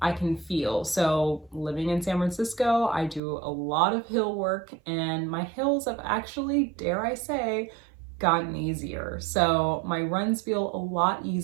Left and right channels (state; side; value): drops out; left; at 3.2 s